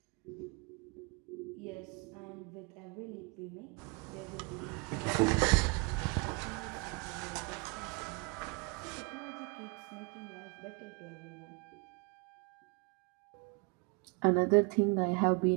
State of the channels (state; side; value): quieter; left; 31.5 dB